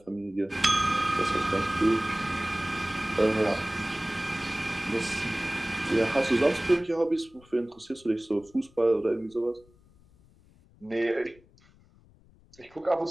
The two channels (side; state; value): left; noise; rumble, 28 dB below the sound